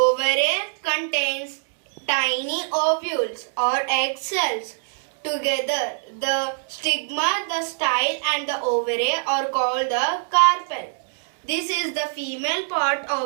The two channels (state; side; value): silent; left; digital silence